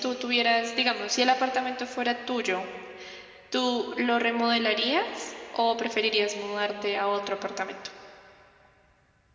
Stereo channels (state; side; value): identical; both; correlation 1.00